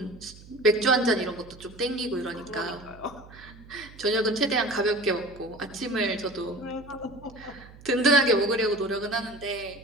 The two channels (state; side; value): noise; right; hum, 20 dB below the sound